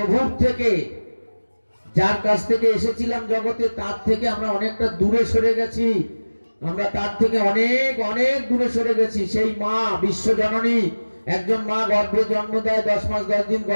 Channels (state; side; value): inverted; both; correlation -1.00